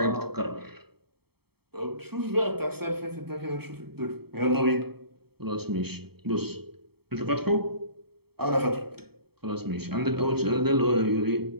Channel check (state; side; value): late; left; 0.96 ms